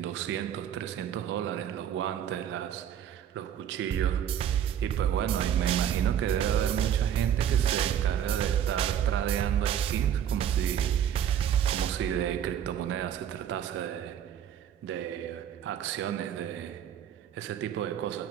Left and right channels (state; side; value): quieter; left; 9.6 dB